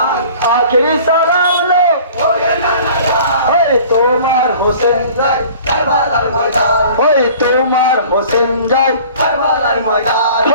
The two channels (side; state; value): both; inverted; correlation -0.47